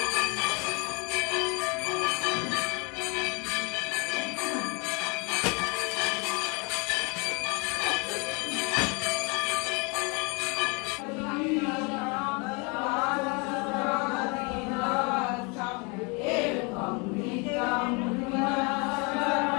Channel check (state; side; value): quieter; right; 30.9 dB